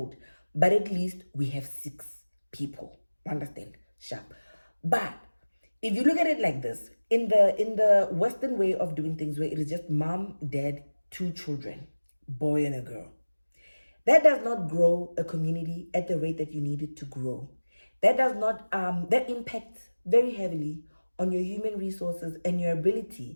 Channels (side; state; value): both; inverted; correlation -1.00